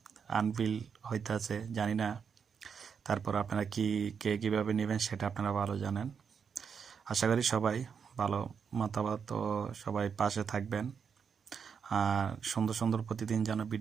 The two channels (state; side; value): quieter; left; 6.6 dB